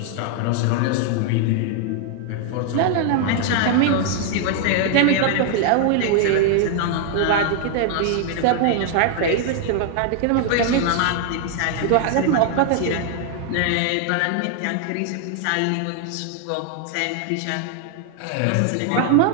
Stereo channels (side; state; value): both; different; correlation 0.00